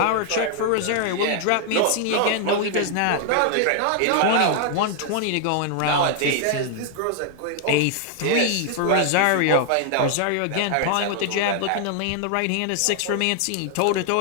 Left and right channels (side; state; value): both; different; correlation 0.00